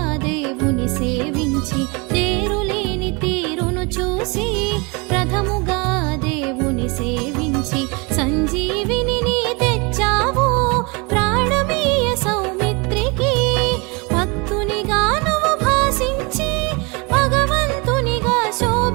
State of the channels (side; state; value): left; quieter; 28.9 dB